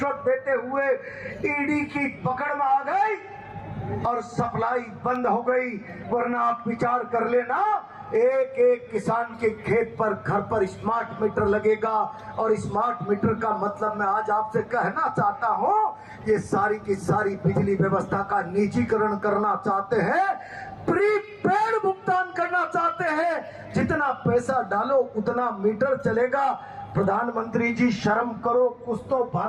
देते हुए ईडी की पकड़ में आ गई और सप्लाई बंद हो गई। वरना आप विचार कर लेना, एक एक किसान के खेत पर घर पर स्मार्ट मीटर लगेगा। और स्मार्ट मीटर का मतलब मैं आज आपसे कहना चाहता हूं, ये सारी की सारी बिजली व्यवस्था का निजीकरण करना चाहते हैं, प्रीपेड भुगतान करना चाहते हैं। जितना पैसा डालो उतना मीटर चलेगा। प्रधानमंत्री जी शर्म करो, कुछ तो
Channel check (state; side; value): identical; both; correlation 1.00